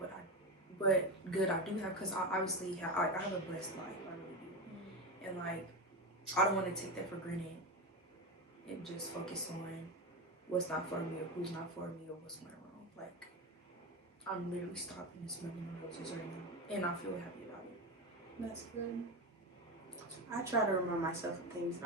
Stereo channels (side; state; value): both; normal; correlation 0.18